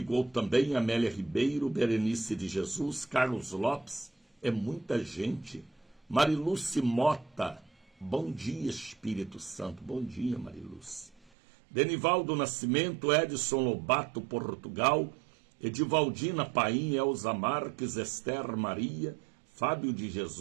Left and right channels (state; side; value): drops out; left; at 11.3 s